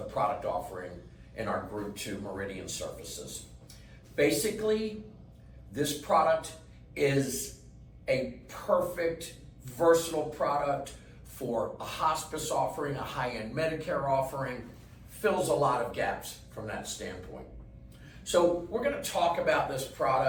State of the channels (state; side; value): identical; both; correlation 1.00